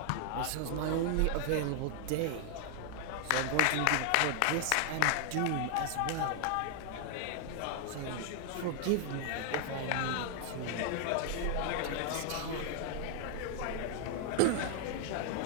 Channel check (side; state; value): both; different; correlation 0.00